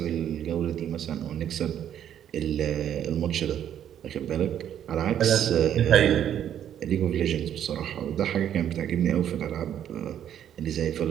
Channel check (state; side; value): quieter; left; 10.1 dB